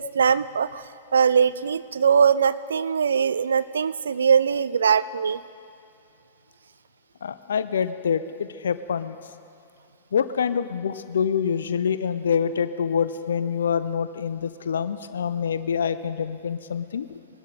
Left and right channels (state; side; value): inverted; both; correlation -0.71